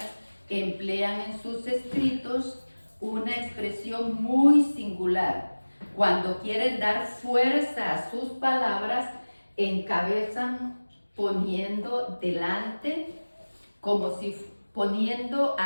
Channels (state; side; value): inverted; both; correlation -1.00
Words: emplean en sus escritos una expresión muy singular Cuando quieren dar fuerza a sus palabras, encabezan poniendo delante, poniendo